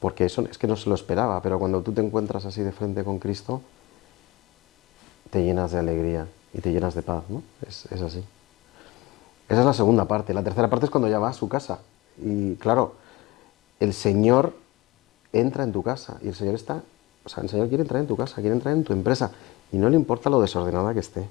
Porque eso es que no se lo esperaba, pero cuando tú te encuentras así de frente con Cristo, te llenas de alegría y te llenas de paz, ¿no? Es así. Esa es la segunda parte. La tercera parte es cuando ya va a su casa. Y claro, el Señor entra en tu casa y el Señor está, o sea, el Señor quiere entrar en tu casa, quiere entrar en tu empresa y no le importa lo desordenada que esté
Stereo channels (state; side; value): quieter; right; 20.5 dB